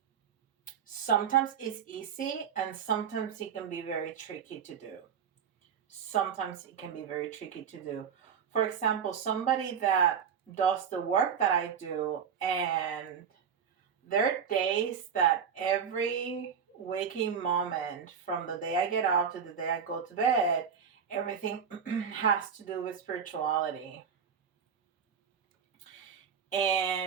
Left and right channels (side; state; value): left; quieter; 7.2 dB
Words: sometimes is easy and sometimes it can be very tricky to do. Sometimes it can be very tricky to do. For example, somebody that does the work that I do, and there are days that every waking moment from the day I get out to the day I go to bed, everything has to do with spirituality.